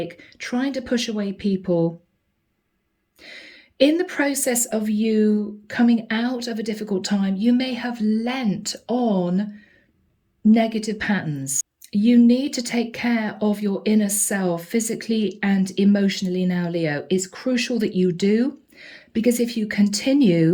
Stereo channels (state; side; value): identical; both; correlation 1.00